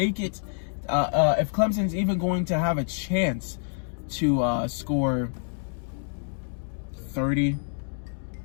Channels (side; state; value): right; silent; 60 dB below the other